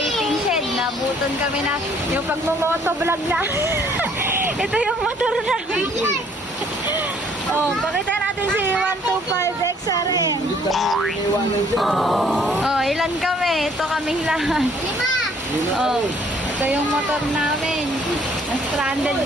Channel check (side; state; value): both; normal; correlation 0.61